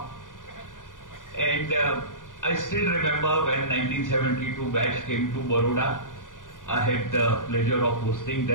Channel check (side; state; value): right; late; 0.88 ms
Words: And I still remember when 1972 batch came to Baroda, I had the pleasure of hosting